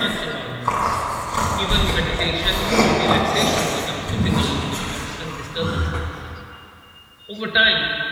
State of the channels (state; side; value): identical; both; correlation 1.00